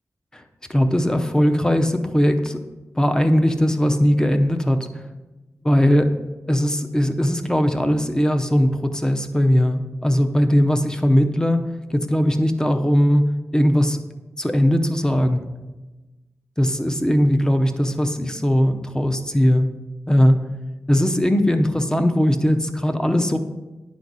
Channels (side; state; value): both; normal; correlation 0.96